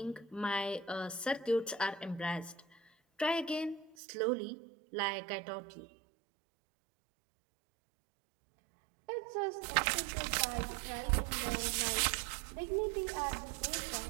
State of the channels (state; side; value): drops out; left; at 4.0 s